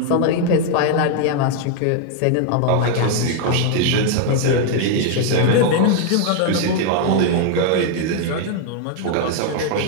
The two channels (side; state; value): both; different; correlation 0.00